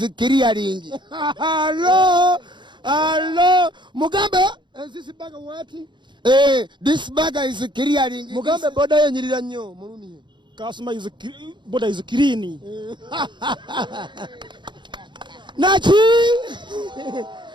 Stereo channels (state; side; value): late; left; 0.22 ms